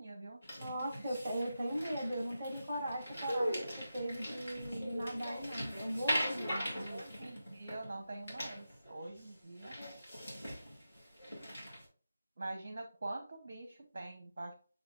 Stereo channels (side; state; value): both; inverted; correlation -0.90